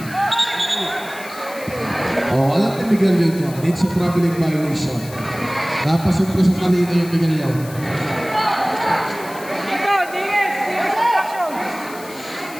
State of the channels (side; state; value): left; noise; hiss, 17 dB below the sound